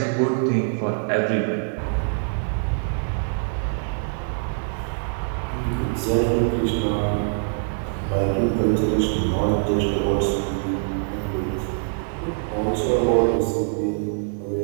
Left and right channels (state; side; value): silent; left; digital silence